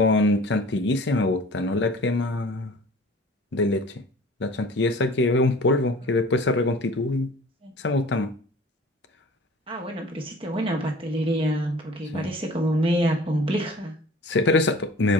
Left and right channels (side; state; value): both; normal; correlation 0.45